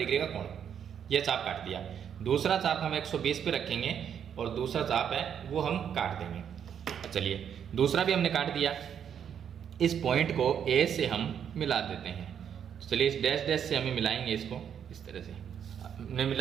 का कोण। ये चाप काट दिया। दूसरा चाप हम 120 पे रखेंगे और दूसरा चाप है वो हम काट देंगे। चलिए दूसरा भी हमने काट दिया। इस पॉइंट को ए से हम मिला देते हैं। तो चलिए इस डैश डैश से हमें मिलाएंगे इसको, इस तरह से हमने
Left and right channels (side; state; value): left; quieter; 8.4 dB